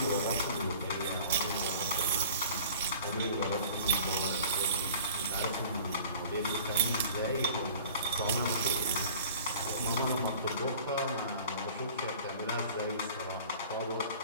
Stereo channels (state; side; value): inverted; both; correlation -0.46